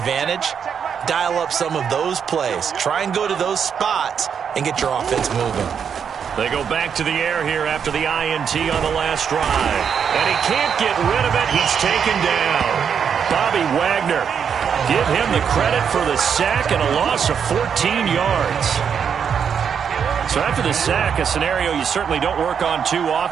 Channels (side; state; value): left; quieter; 7.3 dB